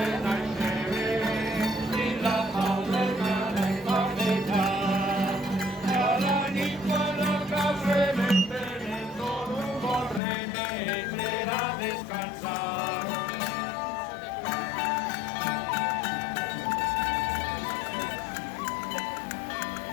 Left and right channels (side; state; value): right; drops out; at 10.2 s